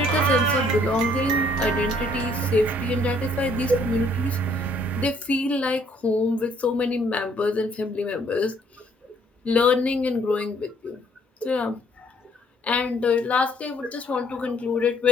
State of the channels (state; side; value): normal; both; correlation 0.64